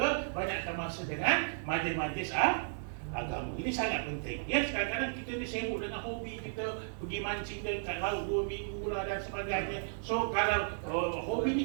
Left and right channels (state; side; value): silent; left; 55 dB below the other